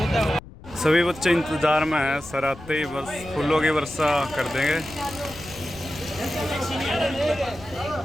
सभी बच्चे इंतजार में हैं, सर आते ही बस फूलों की वर्षा कर देंगे।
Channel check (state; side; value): noise; left; rumble, 18 dB below the sound